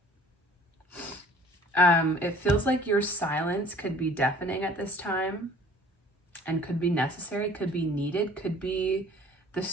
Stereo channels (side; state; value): both; normal; correlation 0.51